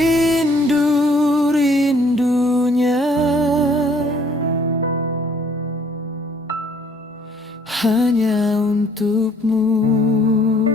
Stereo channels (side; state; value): both; normal; correlation 0.61